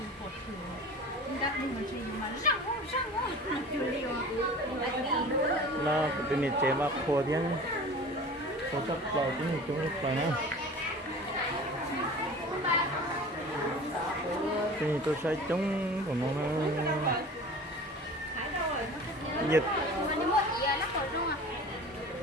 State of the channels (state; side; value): normal; both; correlation 0.39